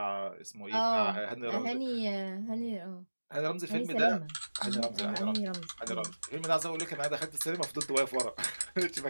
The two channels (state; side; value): inverted; both; correlation -1.00